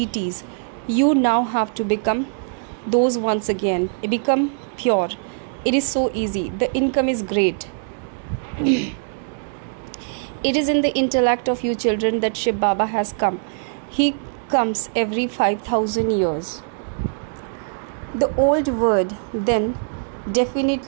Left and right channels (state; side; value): silent; left; digital silence